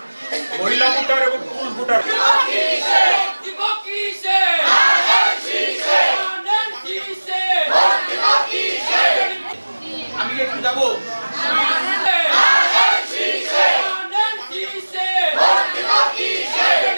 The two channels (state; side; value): inverted; both; correlation -1.00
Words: মহিলা ভোটার এবং পুরুষ ভোটার। আমি একটু যাবো।